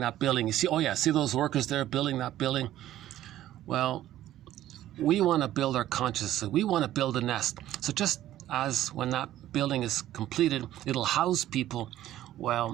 building. You see, oh yeah, see those workers there building that building? Well, we want to build our consciousness. We want to build a nest. So just as when that building is completed, it'll house people.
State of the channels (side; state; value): left; quieter; 13.4 dB